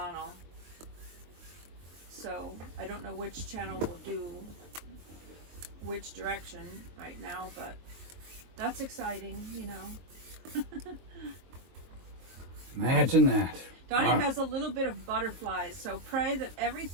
So I don't know which channel will do which direction right now, but that's exciting, Imagine that. Donny has a little bit of butterflies, so pray that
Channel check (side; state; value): left; late; 23 ms